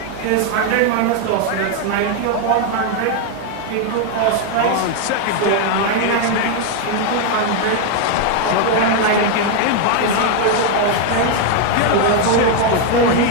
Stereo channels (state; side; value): different; both; correlation 0.01